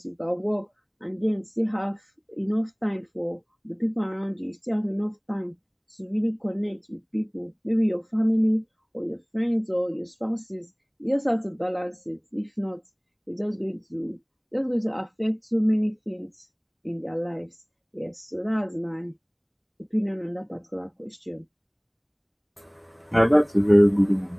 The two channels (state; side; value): identical; both; correlation 1.00